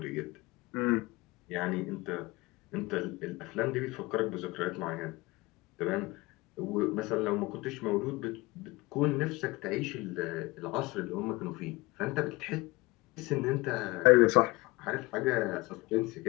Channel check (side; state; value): right; quieter; 22.7 dB